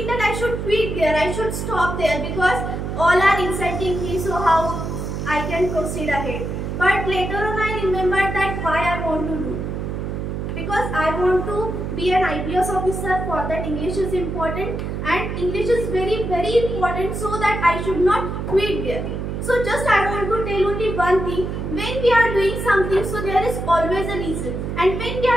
that I should quit there, I should stop there because all are insulting me, so how I can proceed ahead. But later on I remembered that why I want to do. Because I want to be an IPS officer, for that English is important, and English is very important, so that I should not quit there. So just I want to tell only one thing, when we are doing something, so there is always a reason, and when we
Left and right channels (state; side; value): noise; right; hum, 4 dB below the sound